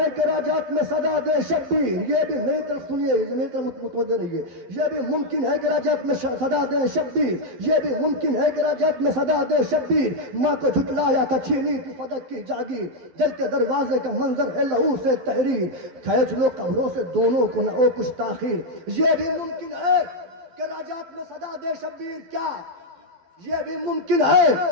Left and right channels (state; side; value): late; left; 12 ms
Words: کہ رجعت میں صدا دے شبیر، یہ بھی میری طرف سنیے، میری طرف متوجہ رہیے، یہ بھی ممکن ہے کہ رجعت میں صدا دے شبیر، یہ بھی ممکن ہے کہ رجعت میں صدا دے شبیر، ماں کو جھٹلایا تھا چھینی تھی فدق کی جاگیر، جلتے دروازے کا منظر ہے لہو سے تحریر، کھینچ لو قبروں سے دونوں کو نہ ہو کچھ تاخیر، یہ بھی ممکن ہے کہ رجعت میں صدا دے شبیر، کیا یہ بھی ممکن ہے